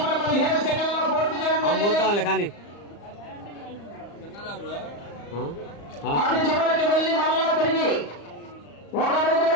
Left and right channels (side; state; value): right; late; 35 ms